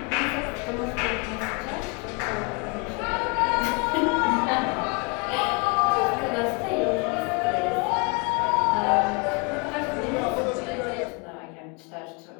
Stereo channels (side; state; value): right; quieter; 31.4 dB